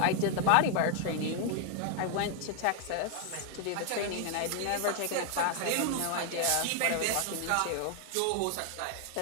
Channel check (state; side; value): different; both; correlation 0.00